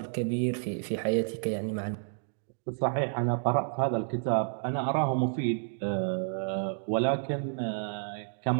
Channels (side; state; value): left; silent; digital silence